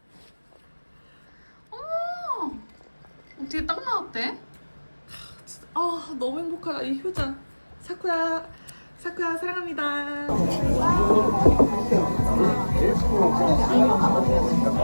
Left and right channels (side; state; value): both; inverted; correlation -1.00